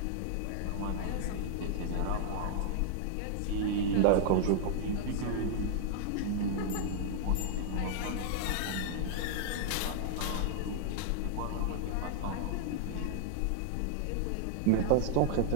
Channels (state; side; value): different; both; correlation -0.01